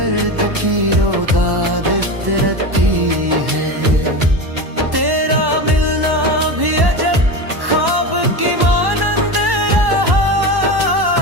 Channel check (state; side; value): late; left; 1.1 ms